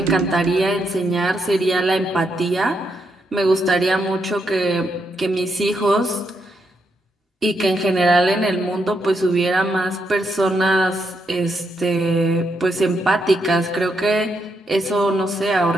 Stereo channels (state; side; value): normal; both; correlation 0.80